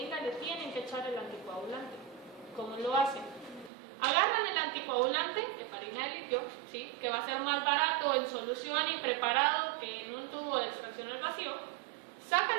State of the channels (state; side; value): drops out; left; at 3.7 s